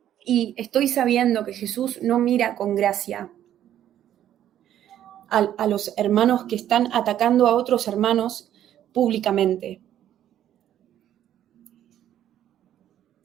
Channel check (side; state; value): left; quieter; 11.3 dB